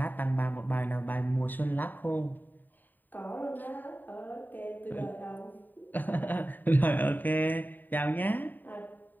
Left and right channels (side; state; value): right; late; 0.089 ms